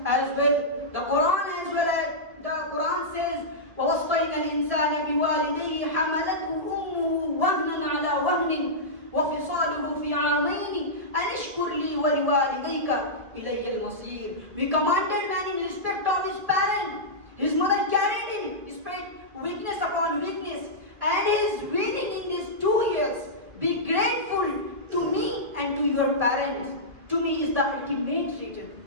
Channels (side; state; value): left; late; 1.7 ms